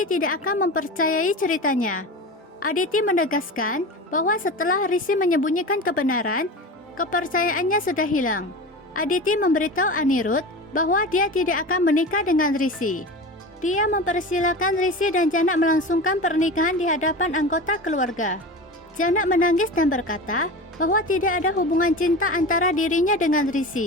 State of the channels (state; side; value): normal; both; correlation 0.29